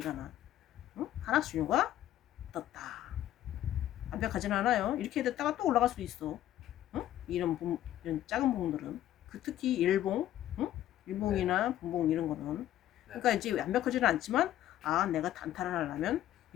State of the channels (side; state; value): right; quieter; 12.7 dB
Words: 하락 신호가 떴다. 완벽하진 않아요. 이렇게 됐다가 또 올라갈 수도 있어. 이런 작은 봉들은 특히 일봉, 일봉이나 분봉 이런 거는 그러니까 이제 완벽하지는 않지만 내가 단타를 하려면